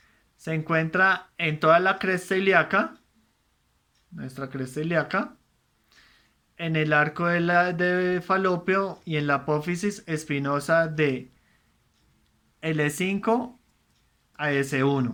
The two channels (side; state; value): both; identical; correlation 1.00